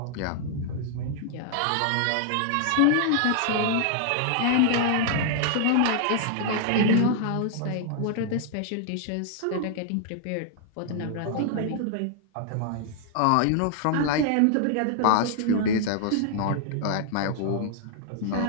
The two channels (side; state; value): both; different; correlation 0.00